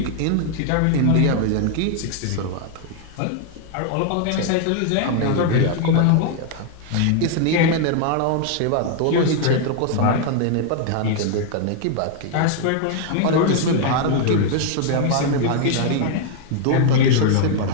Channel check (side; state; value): both; different; correlation 0.00